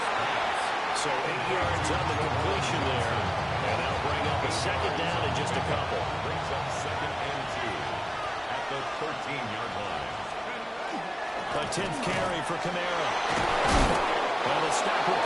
So 8 yards on the completion there. And that'll bring up a 2nd down in just a couple. Brings up 2nd and 2 at the 13-yard line. A 10th carry for Kamara. And the stop will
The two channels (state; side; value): identical; both; correlation 1.00